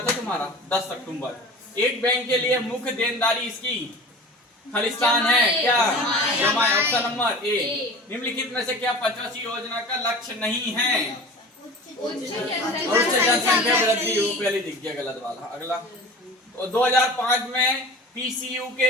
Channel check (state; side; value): normal; both; correlation 0.38